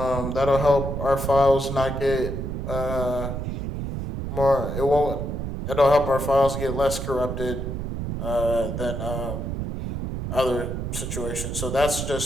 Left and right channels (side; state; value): right; noise; rumble, 4 dB below the sound